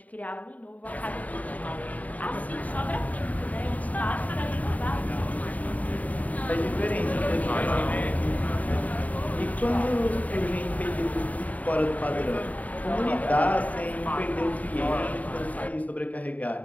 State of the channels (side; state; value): right; late; 0.073 ms